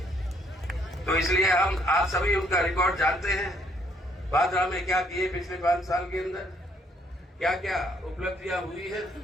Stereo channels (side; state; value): both; normal; correlation 0.68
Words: तो इसलिए हम आप सभी उनका रिकॉर्ड जानते हैं, भादरा में क्या किए पिछले 5 साल के अंदर, क्या क्या उपलब्धियां हुई है